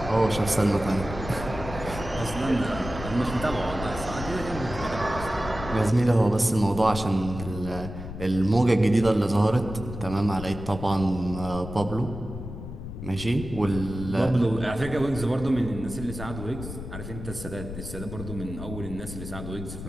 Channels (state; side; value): noise; left; rumble, 9 dB below the sound